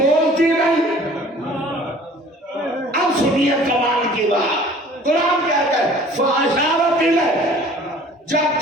نہیں. اب سنیے کمال کی بات، قرآن کہتا ہے فَأَشَارَتْ إِلَيْهِ. جب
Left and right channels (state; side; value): normal; both; correlation 0.50